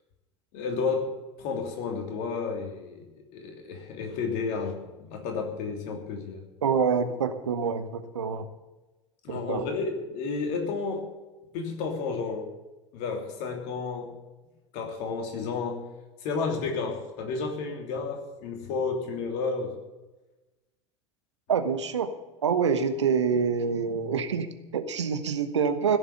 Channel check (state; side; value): normal; both; correlation -0.02